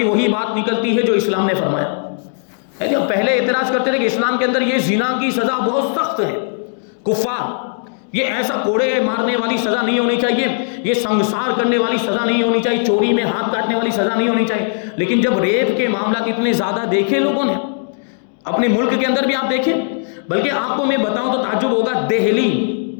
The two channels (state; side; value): silent; right; 68 dB below the other